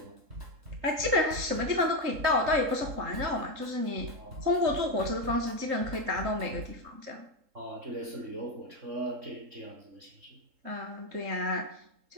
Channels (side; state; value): left; late; 3.7 ms